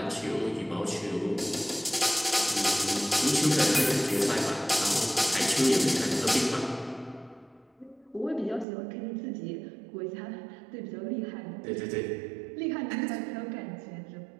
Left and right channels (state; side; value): drops out; left; at 8.7 s